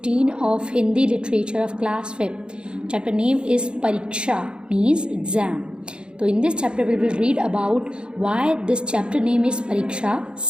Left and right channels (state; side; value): late; left; 0.053 ms